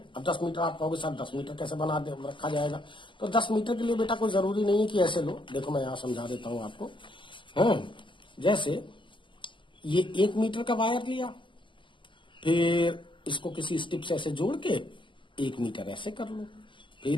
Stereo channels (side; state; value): right; late; 0.24 ms